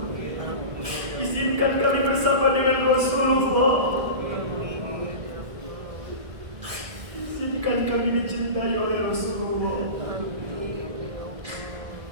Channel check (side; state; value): left; late; 1.6 ms